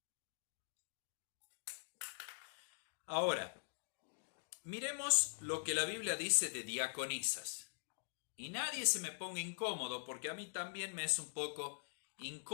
Ahora, miremos lo que la Biblia dice de diaconisas. Y nadie se me ponga incómodo, porque a mí también me es un poco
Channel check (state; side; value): silent; right; digital silence